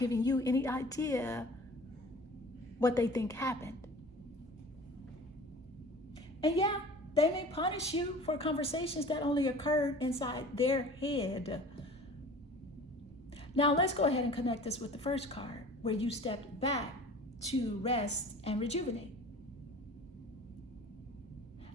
you any idea what they think happened. And yeah, they may punish you for conversations that only occurred inside their head. Now let's go ahead and connect this with the first card, where you stepped back to rest and rejuvenate.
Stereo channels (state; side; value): normal; both; correlation 0.43